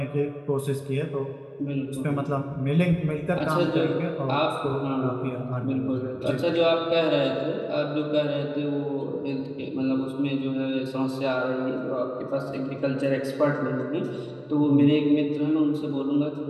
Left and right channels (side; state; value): both; identical; correlation 1.00